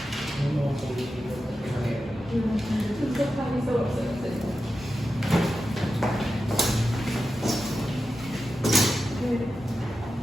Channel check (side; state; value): both; normal; correlation 0.91